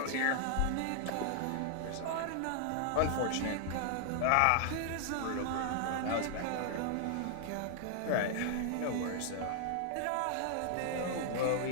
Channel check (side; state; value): both; different; correlation 0.00